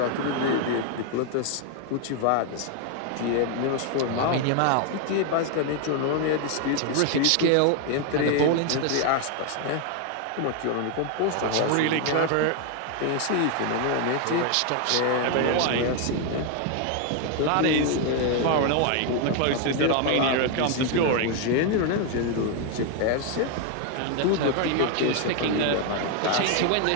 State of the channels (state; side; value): different; both; correlation 0.01